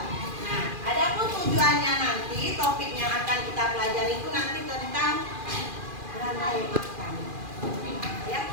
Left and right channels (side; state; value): left; late; 2.4 ms